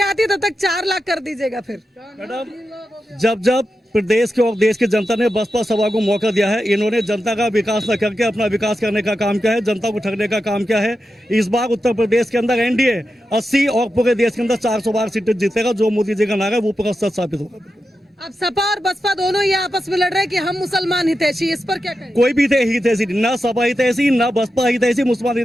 आती हूँ, तब तक 4 लाख कर दीजिएगा। फिर मैडम, जब प्रदेश के और देश की जनता ने बसपा सभा को मौका दिया है, इन्होंने जनता का विकास न करके अपना विकास करने का काम किया है, जनता को ठगने का काम किया है। इस बार उत्तर प्रदेश के अंदर एनडीए 80 और पूरे देश के अंदर 412 सीटें जीतेगा। जो मोदी जी का नारा है वो पूरा सच साबित होगा। अब सपा और बसपा दोनों ये आपस में लड़ रहे हैं कि हम मुसलमान हितैषी, इस पर क्या कहें? कोई भी हितैषी नहीं, ना सपा हितैषी, ना बसपा हितैषी,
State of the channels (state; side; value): normal; both; correlation 0.90